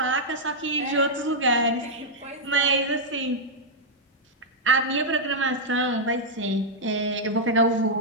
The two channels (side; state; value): both; normal; correlation -0.05